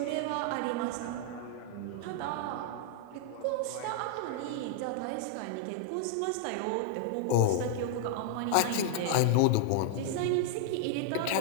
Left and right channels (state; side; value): different; both; correlation -0.01